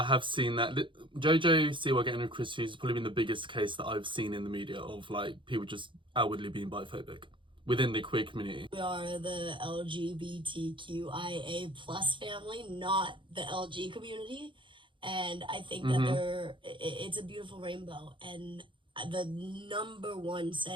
have seen that. JoJo Siwa getting with Chris Hughes has probably been the biggest case that I've seen in the media of, like, people just outwardly being biphobic within the queer community. we are the LGBTQIA plus family, not the LG community. And I think that it's a beautiful rainbow. And the number one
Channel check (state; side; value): late; left; 0.24 ms